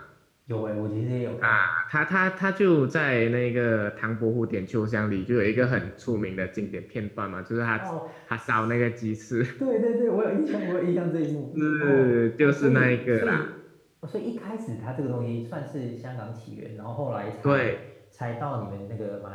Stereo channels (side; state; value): both; identical; correlation 1.00